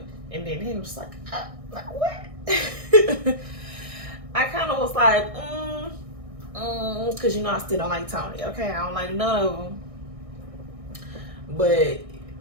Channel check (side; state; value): left; late; 1.6 ms